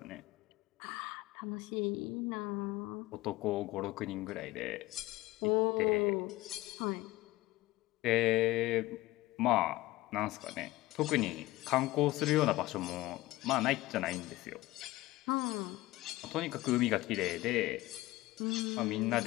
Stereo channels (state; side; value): quieter; right; 18.5 dB